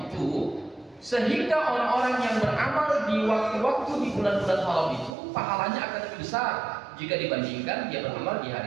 sehingga orang-orang yang beramal di waktu-waktu di bulan-bulan haram itu pahalanya akan lebih besar jika dibandingkan dia beramal di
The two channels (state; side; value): drops out; left; at 5.2 s